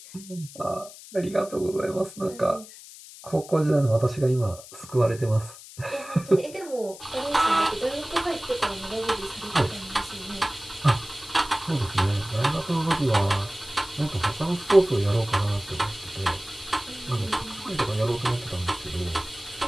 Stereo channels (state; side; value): noise; left; hiss, 17 dB below the sound